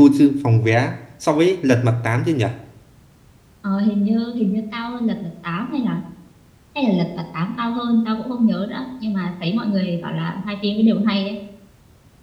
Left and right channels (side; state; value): both; identical; correlation 1.00